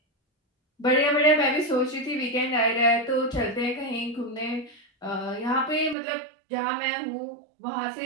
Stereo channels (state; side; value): drops out; left; at 6.0 s